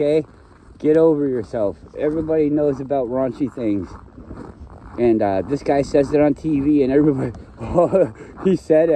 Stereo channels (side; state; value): both; identical; correlation 1.00